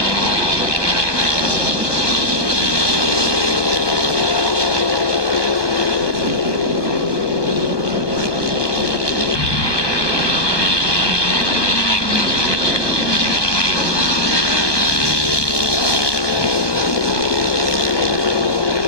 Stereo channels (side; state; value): right; late; 1.2 ms